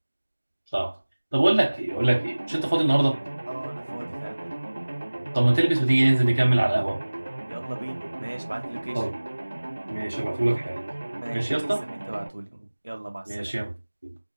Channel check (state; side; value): inverted; both; correlation -1.00